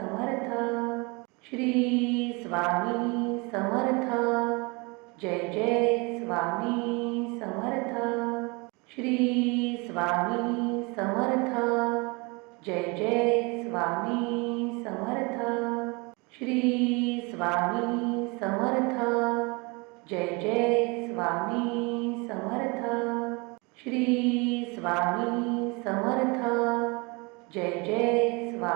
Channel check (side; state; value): left; quieter; 28.3 dB